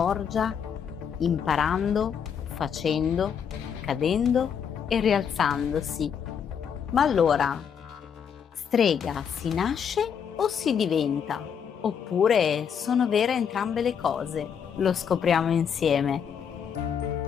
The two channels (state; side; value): quieter; right; 7.5 dB